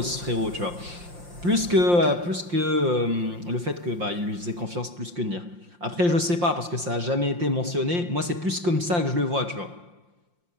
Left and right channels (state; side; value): late; left; 5.7 ms